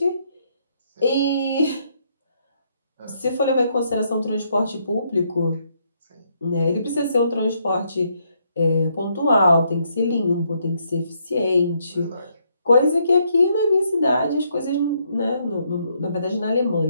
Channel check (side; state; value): both; inverted; correlation -0.74